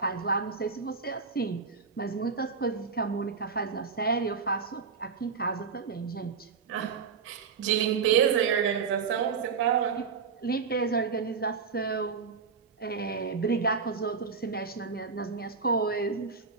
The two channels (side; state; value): left; quieter; 5.5 dB